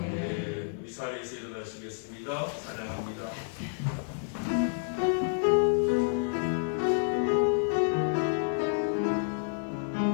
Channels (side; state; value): right; silent; 58 dB below the other